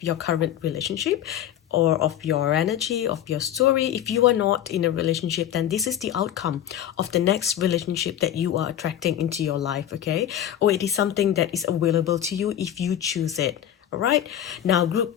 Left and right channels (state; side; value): quieter; right; 10.8 dB